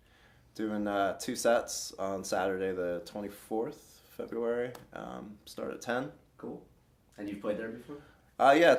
Doing 2 sets on Saturday the 24th February. Start at 10. Cool. And you've played there before? Yeah,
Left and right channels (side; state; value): both; identical; correlation 1.00